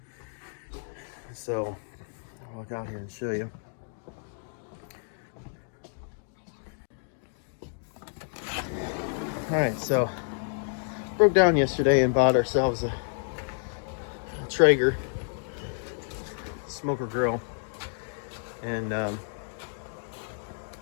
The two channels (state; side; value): silent; right; digital silence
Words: So I'll walk out here and show you. All right, so broke down yesterday and bought ourselves a Traeger smoker grill, and